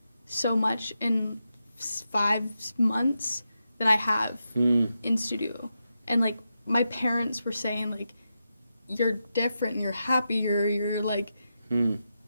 so much in 5 months that I have in studio. And like my parents were saying like, you're different, you're happier, you're like,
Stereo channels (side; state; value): both; inverted; correlation -0.88